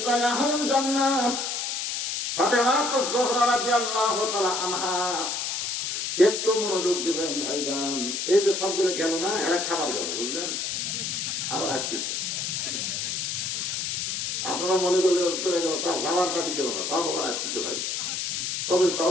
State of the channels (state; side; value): noise; left; hiss, 2 dB below the sound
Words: আহলুল জান্নাত ফাতেমা যোহরা রাদিয়াল্লাহু তাআলা আনহা। একটু মনোযোগ দিবেন ভাইজান, এই যে সবগুলো গেল না, এরা খাবার গেল, বুঝলেন? আবার আসতেছে, আপনারা মনে করলে চলে গেল, তার যাওয়ার পাটি কেউ না, সব আবার আসতেছে ভাই। তবে